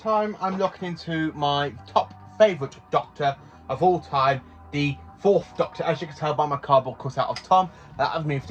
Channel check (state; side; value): identical; both; correlation 1.00